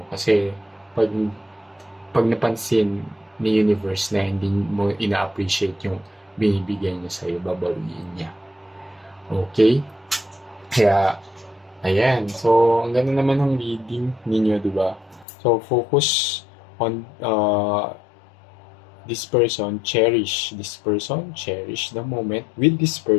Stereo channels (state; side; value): drops out; right; at 15.2 s